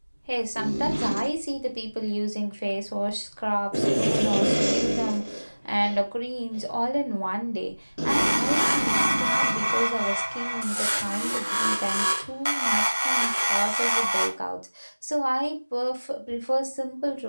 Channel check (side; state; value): both; inverted; correlation -1.00